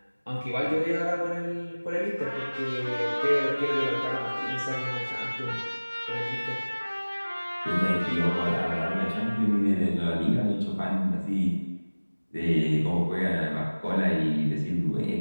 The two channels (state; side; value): inverted; both; correlation -1.00